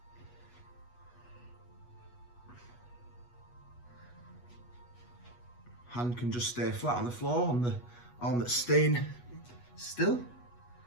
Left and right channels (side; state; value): right; late; 8.2 ms